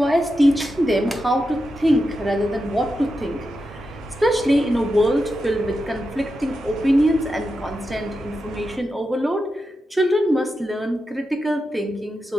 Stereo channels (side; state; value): both; normal; correlation 0.88